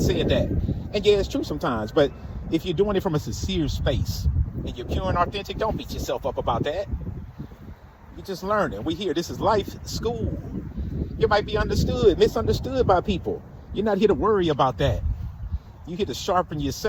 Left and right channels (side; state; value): both; identical; correlation 1.00